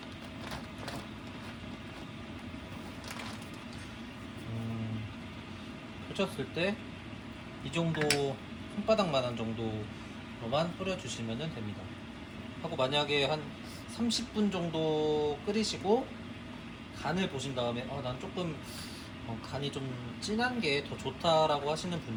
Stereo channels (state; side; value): identical; both; correlation 1.00